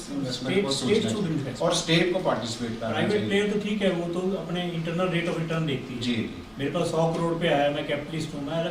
इन्वेस्टमेंट को सोचना चाहिए और स्टेट को पार्टिसिपेट करना चाहिए। प्राइवेट प्लेयर तो ठीक है, वो तो अपने इंटरनल रेट ऑफ रिटर्न देखती है। जी। मेरे पास 100 करोड़ पे आया, मैं कैपिटलिस्ट हूँ, मैं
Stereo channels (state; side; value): identical; both; correlation 1.00